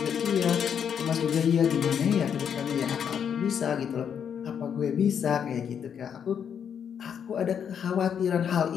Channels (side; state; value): right; quieter; 7.9 dB